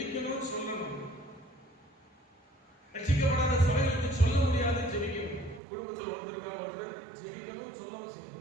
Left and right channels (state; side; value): drops out; left; at 5.6 s